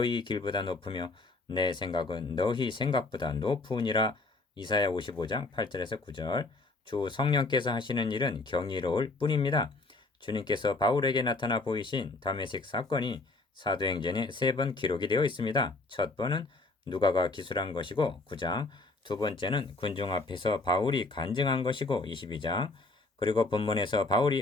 길보다 높으며 내 생각은 너희 생각보다 높으니라. 이사야 55장 8절에서 9절. 주 성령께서 하시는 일은 경이로울 뿐입니다. 주님께서 바울에게 나타나 보이신 다메섹 사건이 사도행전에 3번 기록이 되어 있습니다. 첫 번은 누가가 기술한 것이고 9장, 두 번째는 군중 앞에서 바울이 간증한 것이고 22장, 그리고 본문에서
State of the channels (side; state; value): right; quieter; 3.2 dB